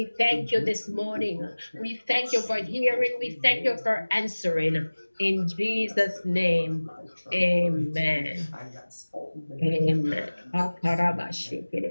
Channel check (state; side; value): inverted; both; correlation -1.00